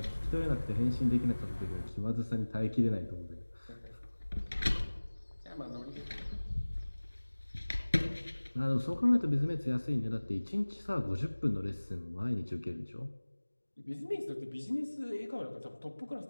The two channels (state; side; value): inverted; both; correlation -1.00